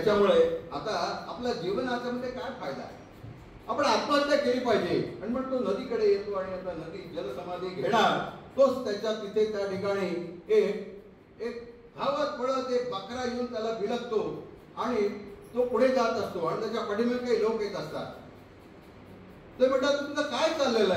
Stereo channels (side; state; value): both; identical; correlation 1.00